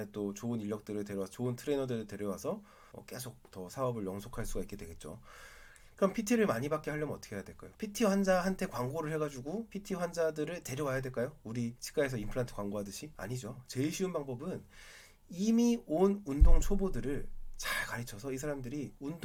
또 좋은 인력들을 데려와서 좋은 트레이너들을 데려와서 계속 더 사업을 영속할 수가 있게 되겠죠. 그럼 PT를 많이 받게 하려면 어떻게 해야 될까요? PT 환자한테 광고를 해가지고 PT 환자들을 데려와야 될까요? 우리 치과에서 임플란트 광고하듯이? 아니죠. 제일 쉬운 방법은 이미 온 운동 초보들을 잘 가르쳐서 이 사람들이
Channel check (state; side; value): identical; both; correlation 1.00